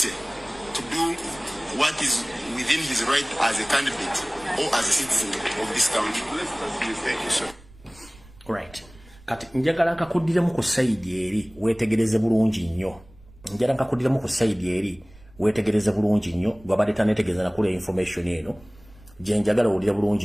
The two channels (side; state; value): right; noise; rumble, 24 dB below the sound